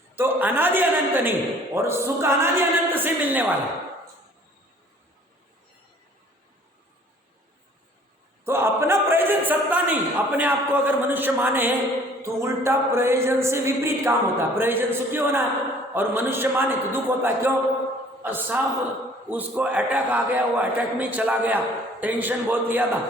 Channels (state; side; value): normal; both; correlation 0.54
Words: तो अनादि अनंत नहीं, और सुख अनादि अनंत से मिलने वाला। तो अपना प्रयोजन सत्ता नहीं, अपने आप को अगर मनुष्य माने तो उल्टा प्रयोजन से विपरीत काम होता है। प्रयोजन सुखी होना है और मनुष्य माने तो दुख होता है। क्यों साहब? उसको अटैक आ गया, वो अटैक में चला गया, टेंशन बहुत लिया